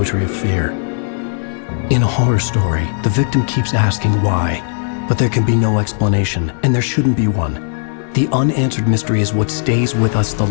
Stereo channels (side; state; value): right; silent; 69 dB below the other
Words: of fear. In a horror story, the victim keeps asking why, but there can be no explanation, and there shouldn't be one. The unanswered mystery is what stays with us the